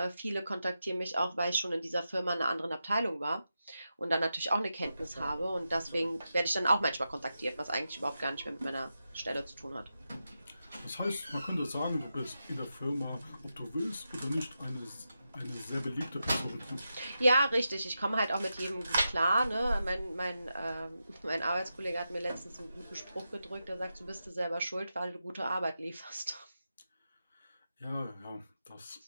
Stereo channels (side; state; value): both; inverted; correlation -0.89